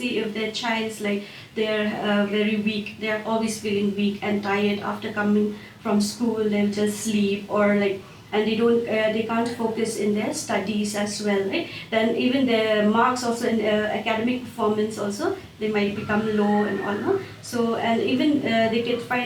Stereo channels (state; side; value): identical; both; correlation 1.00